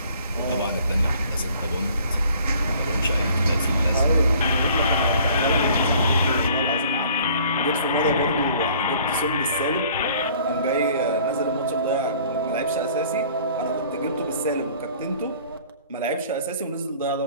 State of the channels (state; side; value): inverted; both; correlation -0.53